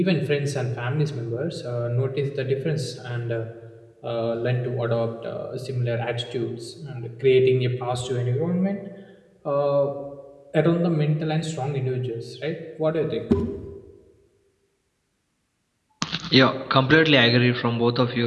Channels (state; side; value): identical; both; correlation 1.00